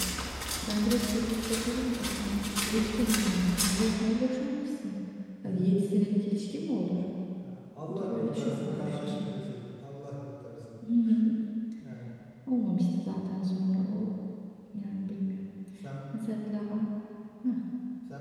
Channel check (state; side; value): identical; both; correlation 1.00